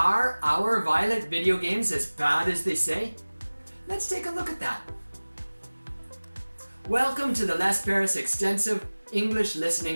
our violent video games as bad as they say? Let's take a look at that. Welcome to the Les Paris Extensive English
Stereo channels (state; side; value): inverted; both; correlation -1.00